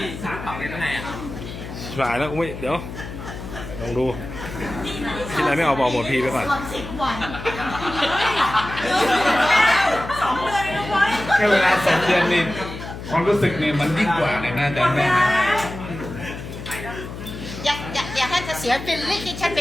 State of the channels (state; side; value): noise; left; hum, 10 dB below the sound